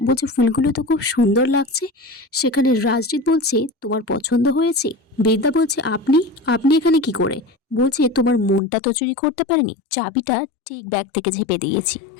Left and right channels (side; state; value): right; drops out; at 8.6 s